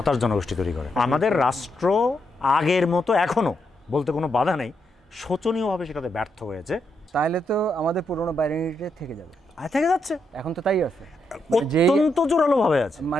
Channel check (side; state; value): both; normal; correlation 0.80